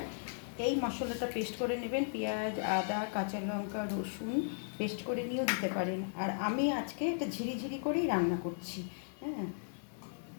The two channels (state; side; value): silent; right; 54 dB below the other